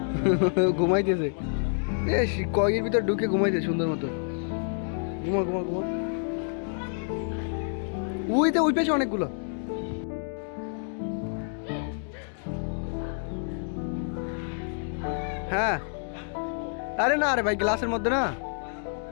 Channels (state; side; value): silent; right; 59 dB below the other